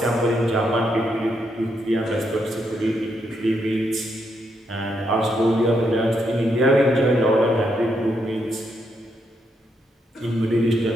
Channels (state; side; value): normal; both; correlation 0.79